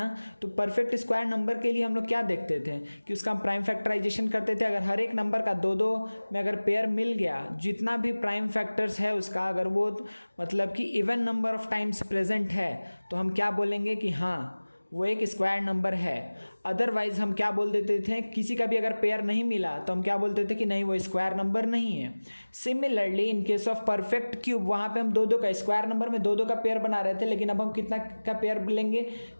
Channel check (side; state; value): both; inverted; correlation -1.00